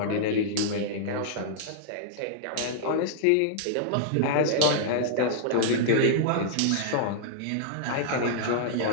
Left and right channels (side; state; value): both; different; correlation -0.01